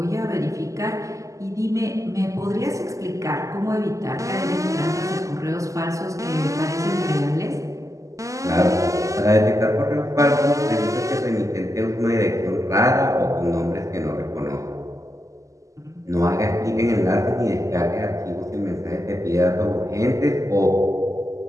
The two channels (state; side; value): late; left; 0.16 ms